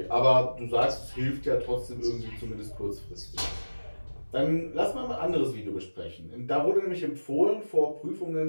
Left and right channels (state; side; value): inverted; both; correlation -1.00